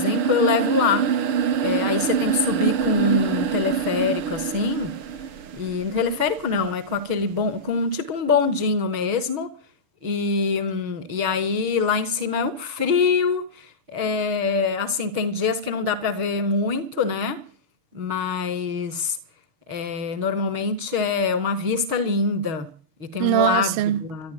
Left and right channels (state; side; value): late; left; 6.3 ms